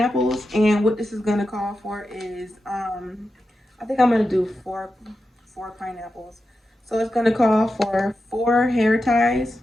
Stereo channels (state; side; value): normal; both; correlation 0.90